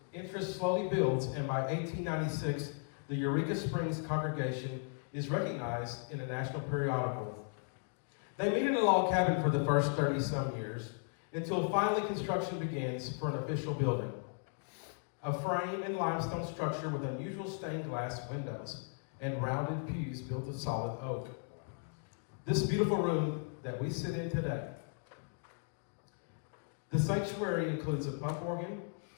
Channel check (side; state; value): right; silent; 53 dB below the other